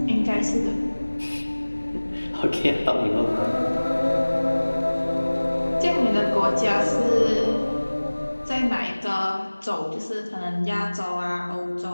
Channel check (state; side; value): inverted; both; correlation -1.00